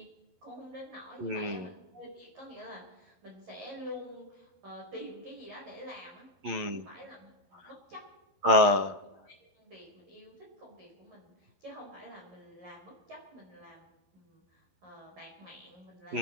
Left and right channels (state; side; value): late; left; 11 ms